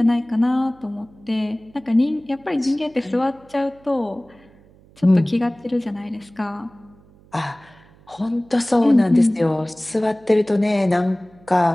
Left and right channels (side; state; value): right; noise; hum, 28 dB below the sound